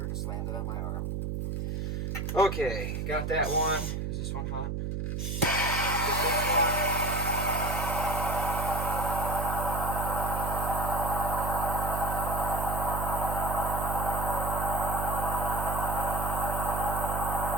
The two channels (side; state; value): right; noise; hum, 2 dB below the sound